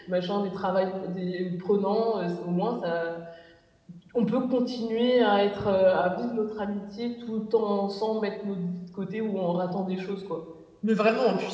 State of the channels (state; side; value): identical; both; correlation 1.00